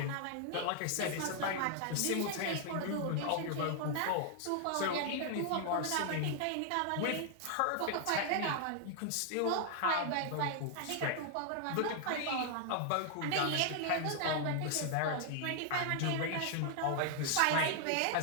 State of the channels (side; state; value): both; different; correlation 0.00